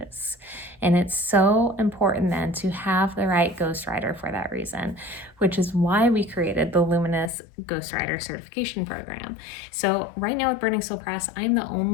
And it's so important then to have the right ghostwriter for that reason, which is why we created the Luminous Ghostwriter Certification program. So right now with Burning Soul Press, I'm the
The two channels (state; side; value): drops out; right; at 7.3 s